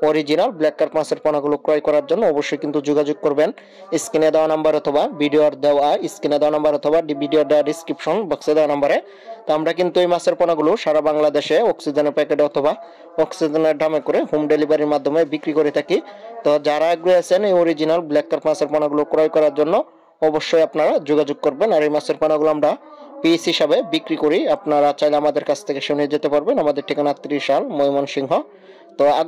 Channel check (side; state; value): both; identical; correlation 1.00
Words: অরিজিনাল ব্ল্যাক কার্প মাছের পোনাগুলো ক্রয় করার জন্য অবশ্যই কিন্তু যোগাযোগ করবেন স্ক্রিনে দেওয়া নাম্বার অথবা ভিডিওর দেওয়া ডিসক্রিপশন বক্সে দেওয়া নাম্বারে। তো আমরা কিন্তু এই মাছের পোনাগুলো সারা বাংলাদেশে অক্সিজেনের প্যাকেটে অথবা অক্সিজেনের দামে করে হোম ডেলিভারির মাধ্যমে বিক্রি করে থাকি। তো যারা আগ্রহী আছেন এই অরিজিনাল ব্ল্যাক কার্প মাছের পোনাগুলো ক্রয় করার জন্য অবশ্যই আপনারা যোগাযোগ করবেন। আর এই মাছের পোনাগুলো আমরা পিস হিসাবে বিক্রি করি, আপনারা চাইলে আমাদের কাছ থেকে শুনে যেতে পারবেন। আমাদের ঠিকানা 30 সাল ময়মনসিংহ। তো